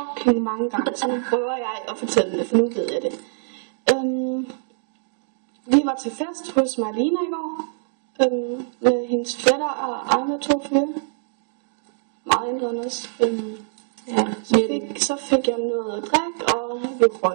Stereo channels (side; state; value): left; silent; digital silence